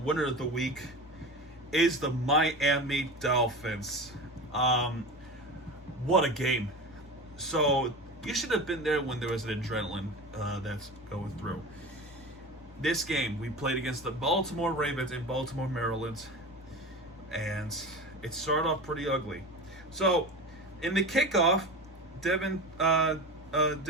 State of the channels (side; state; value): both; normal; correlation 0.30